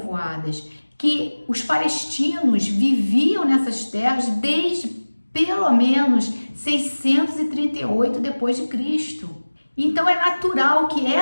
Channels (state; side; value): inverted; both; correlation -1.00